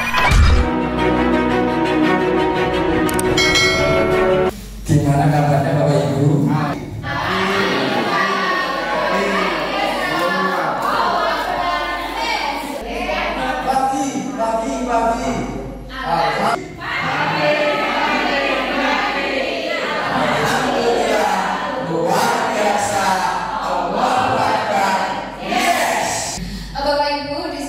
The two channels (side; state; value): both; identical; correlation 1.00